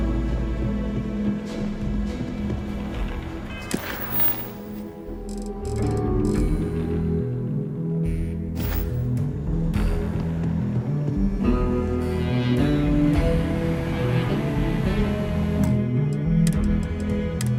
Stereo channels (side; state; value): both; identical; correlation 1.00